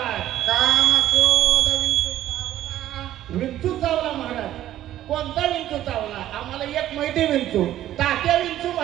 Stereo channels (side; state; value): left; quieter; 12.9 dB